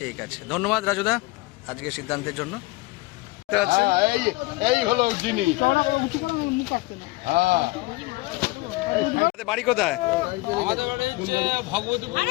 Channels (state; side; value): quieter; right; 22.0 dB